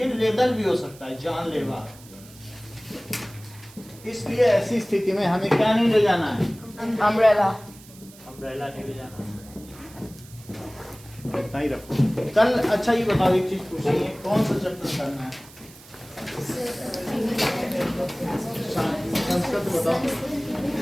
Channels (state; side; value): noise; right; hiss, 21 dB below the sound